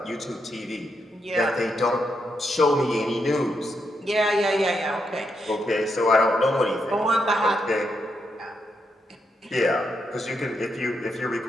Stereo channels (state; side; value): normal; both; correlation 0.81